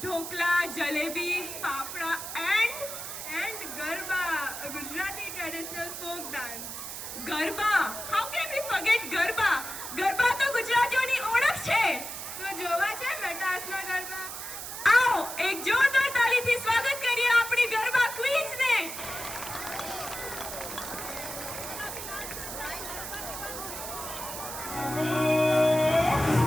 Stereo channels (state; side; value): noise; right; hiss, 8 dB below the sound